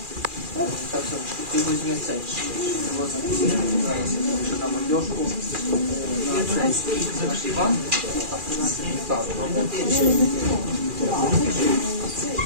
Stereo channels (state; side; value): late; left; 2.4 ms